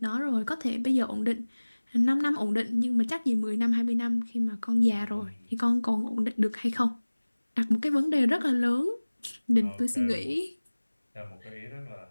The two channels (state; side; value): inverted; both; correlation -1.00